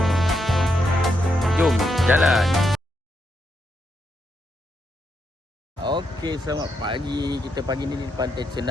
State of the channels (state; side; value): normal; both; correlation 0.81